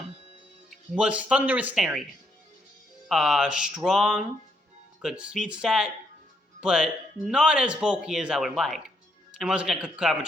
was Thundurus Therian. Strong, good speed stat, but not as bulky as I would like. And when I was looking at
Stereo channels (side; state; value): both; normal; correlation 0.74